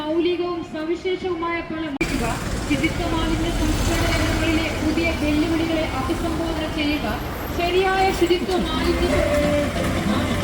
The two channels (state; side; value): identical; both; correlation 1.00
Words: സവിശേഷവുമായ പല ശുചിത്വ മാലിന്യ സംസ്കരണ രംഗങ്ങളിലെ പുതിയ വെല്ലുവിളികളെ അഭിസംബോധന ചെയ്യുക, ശരിയായ ശുചിത്വ മാലിന്യ